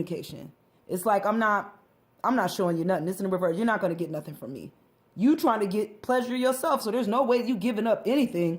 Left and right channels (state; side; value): identical; both; correlation 1.00